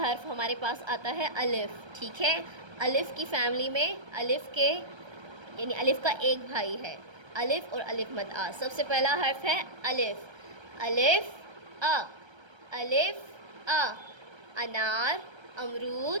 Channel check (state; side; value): late; left; 1.3 ms